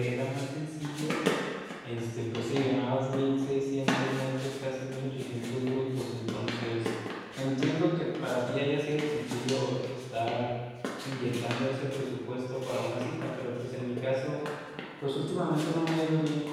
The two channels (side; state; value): both; identical; correlation 1.00